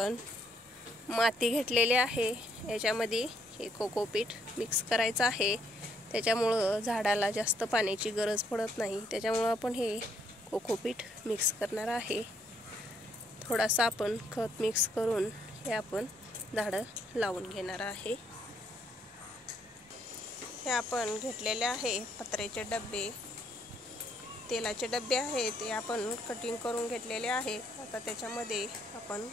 माती घेतलेली आहे. याच्यामध्ये हे कोकोपीट मिक्स करायचं आहे. त्याच्यामुळं झाडाला जास्त पाण्याची गरज पडत नाही. त्याच्यामुळं आपण हे कोकोपीट मिक्स करणार आहे. थोडासा आपण खत मिक्स करून हे आपण झाडं लावून घेणार आहे. हे आपण घेतलेले आहे पत्र्याचे डबे, तेलाचे डबे आहेत. ते आपण कटिंग करून घेतलेले आहे. आता त्याच्यामध्ये आपण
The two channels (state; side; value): normal; both; correlation 0.70